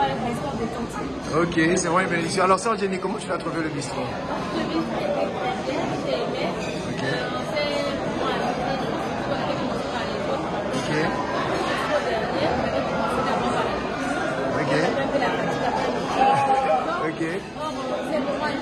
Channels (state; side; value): identical; both; correlation 1.00